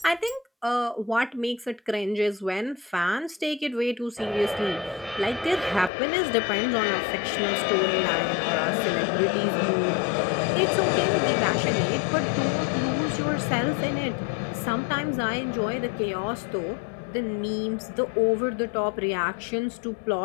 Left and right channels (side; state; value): right; drops out; at 5.9 s